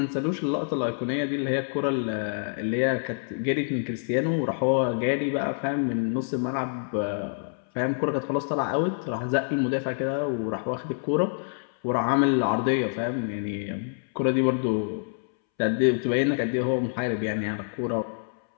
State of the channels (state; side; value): silent; right; 60 dB below the other